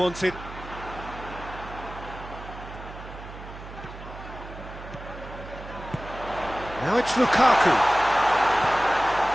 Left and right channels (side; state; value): right; noise; hum, 13 dB below the sound